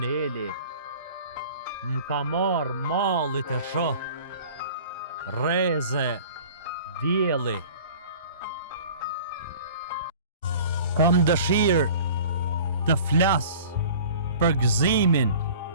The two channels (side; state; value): both; inverted; correlation -0.45